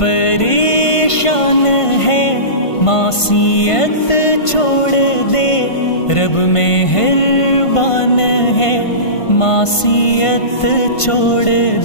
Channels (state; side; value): late; right; 1.5 ms